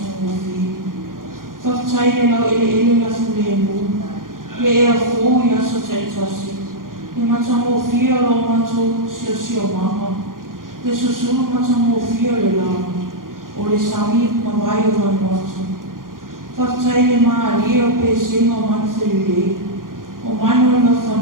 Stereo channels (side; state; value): left; late; 0.90 ms